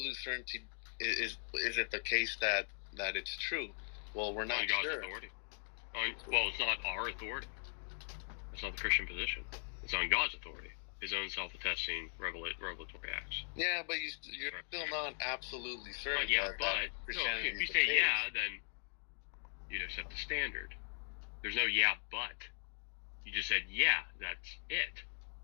certainty is it the case that it's true? Well, we're not God's sure. Authority. Well, it's not our authority. It's not the Christian position. It's on God's authority. His own self-attesting revelatory acts. Yeah, but you're still not absolutely certain. But if you say yeah, then you'd accept the standard. There's no yeah, but. You just said yeah, that's it.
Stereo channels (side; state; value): right; silent; 51 dB below the other